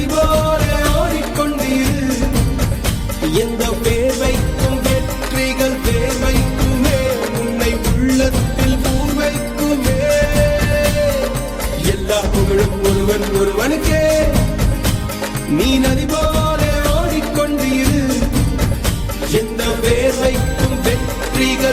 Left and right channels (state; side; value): identical; both; correlation 1.00